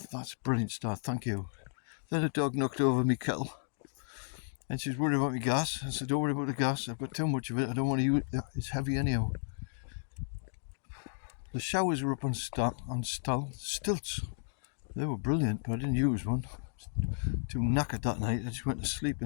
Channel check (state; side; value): silent; right; digital silence